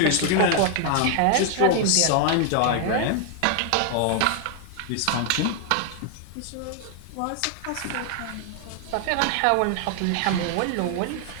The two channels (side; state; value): both; different; correlation 0.00